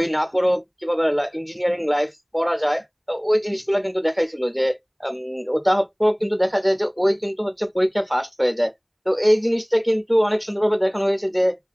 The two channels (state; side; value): identical; both; correlation 1.00